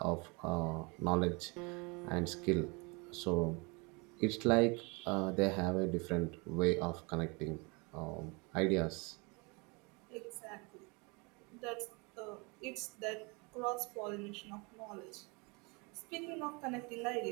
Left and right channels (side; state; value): left; quieter; 29.6 dB